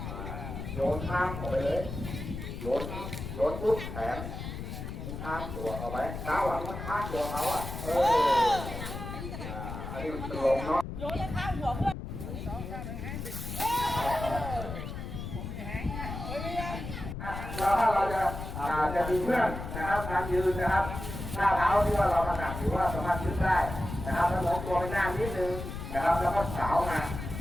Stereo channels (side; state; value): left; noise; rumble, 7 dB below the sound